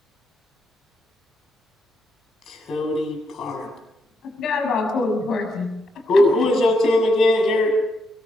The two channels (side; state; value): both; normal; correlation 0.79